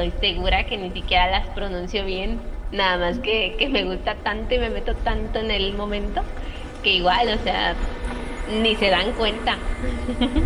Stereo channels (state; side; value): identical; both; correlation 1.00